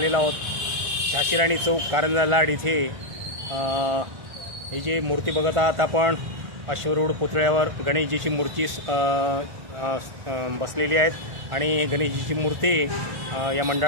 आहोत झाशीराणी चौक कारंजा लाड इथे. ही जी मूर्ती बघत आहात आपण अश्वरूढ पुतळ्यावर गणेशजीची मूर्ती बसलेली आहेत आणि गणेशजीची मूर्ती या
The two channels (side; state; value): left; late; 1.5 ms